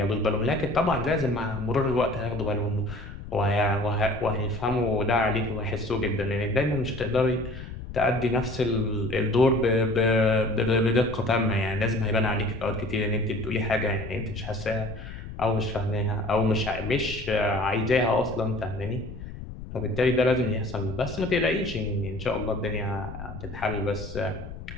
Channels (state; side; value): noise; left; rumble, 11 dB below the sound